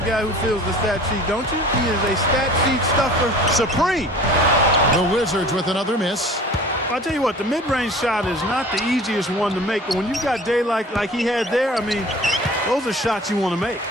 who fills the stat sheet, don't you? He is a stat sheet stuffer supreme. The Wizards with another miss. I'll tell you what, the mid-range shot is not the easiest one to make, but when you've got daylight like he had there, I mean, those are shots you want to make.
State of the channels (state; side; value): normal; both; correlation 0.44